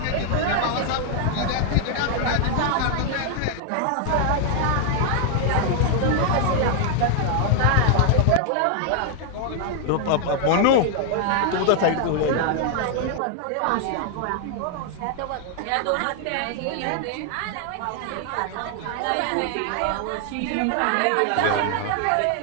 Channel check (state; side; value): different; both; correlation 0.00